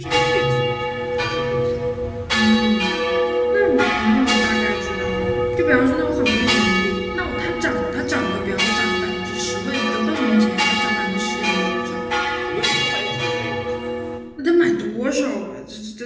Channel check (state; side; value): identical; both; correlation 1.00